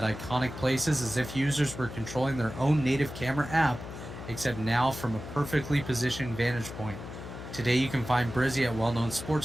iconic places as if users were controlling their own native camera app, except now from a perfectly positioned vantage point. Today you can find Brizzy at well-known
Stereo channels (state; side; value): noise; left; hum, 11 dB below the sound